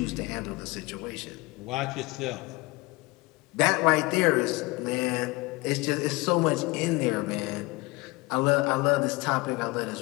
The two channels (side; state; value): right; quieter; 23.5 dB